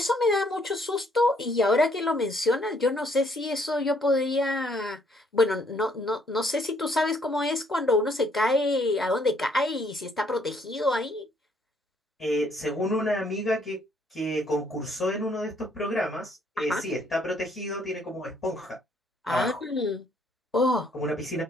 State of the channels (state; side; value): normal; both; correlation 0.67